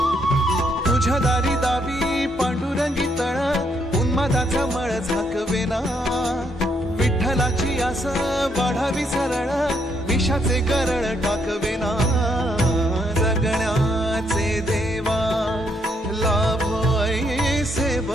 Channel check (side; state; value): both; normal; correlation 0.74